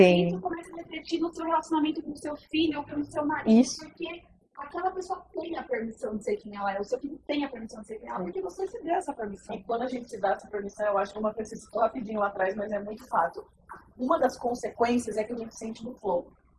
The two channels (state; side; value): identical; both; correlation 1.00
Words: Isso começa a refletir no seu relacionamento com o seu filho ou com o seu marido, Isso. porque aquela pessoa tem a permissão de ser quem ela é, o seu filho tem a permissão de ser quem ela é, porque você se deu essa permissão. E quando a gente se dá essa permissão, eu acho que uma coisa que rapidinho lá atrás, mas é muito fato. Uma das consequências é que a gente sente no flow. O